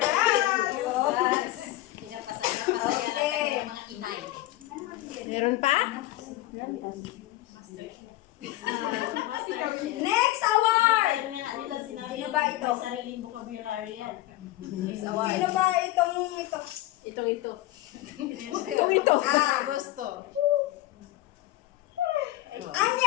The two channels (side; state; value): right; quieter; 16.9 dB